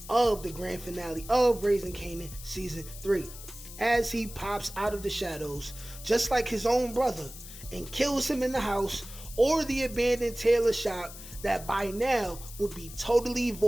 of the grand finale of Raising Kanan Season 3. As he pops out of the shadows, just like his own brother, and kills him in the house or the abandoned Tailor shop that by now would be totally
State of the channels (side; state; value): left; noise; hiss, 14 dB below the sound